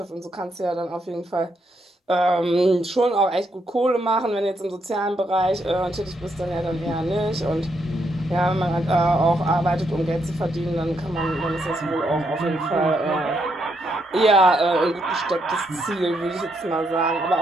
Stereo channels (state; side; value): normal; both; correlation 0.77